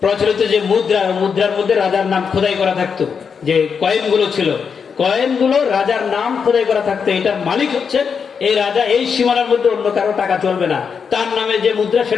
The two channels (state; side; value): quieter; right; 6.3 dB